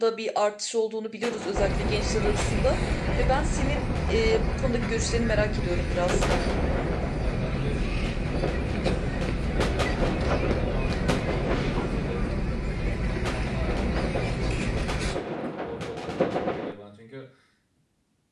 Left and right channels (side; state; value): both; identical; correlation 1.00